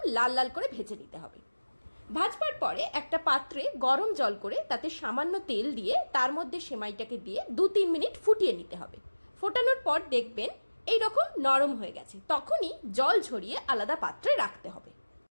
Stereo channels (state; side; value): inverted; both; correlation -1.00